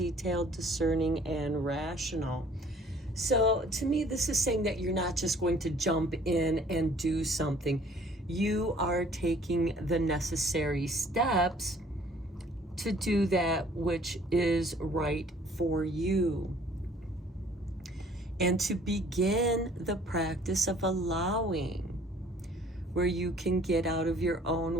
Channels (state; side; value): normal; both; correlation 0.56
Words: discerning, and rational. So to me, this is saying that you're not just going to jump in and do something. You are taking the necessary steps to do that which is right for you, and to begin the practice of allowing, where you can get out of your